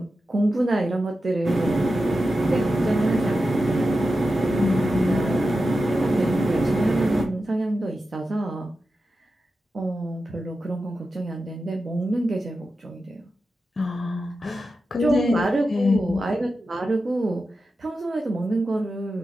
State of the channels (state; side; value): normal; both; correlation 0.91